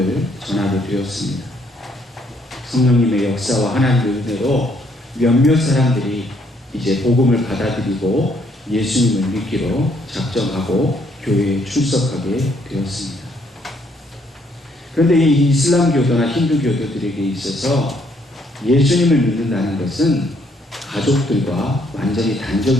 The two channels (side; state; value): both; normal; correlation 0.69